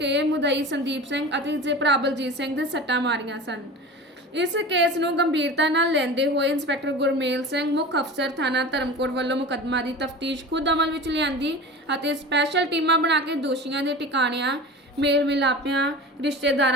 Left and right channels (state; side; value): normal; both; correlation 0.34